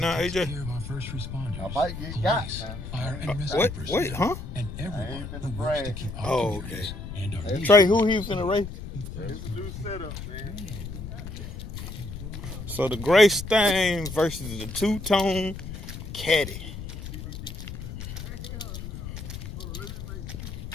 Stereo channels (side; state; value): left; noise; rumble, 9 dB below the sound